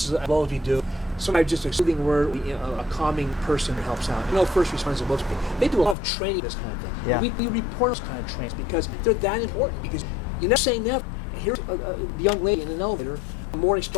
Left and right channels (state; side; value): drops out; right; at 6.0 s